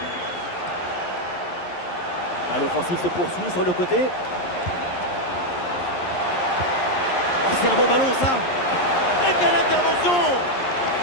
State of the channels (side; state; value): right; late; 11 ms